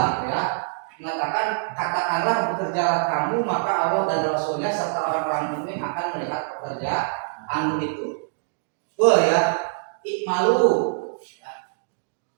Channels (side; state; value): left; silent; digital silence